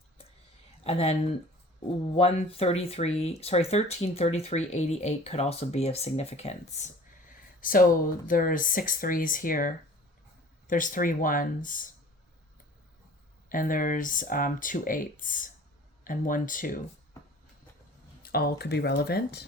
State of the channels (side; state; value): both; normal; correlation 0.46